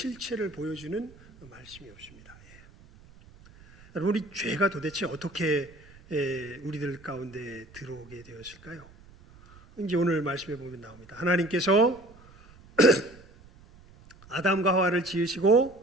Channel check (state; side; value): noise; right; rumble, 23 dB below the sound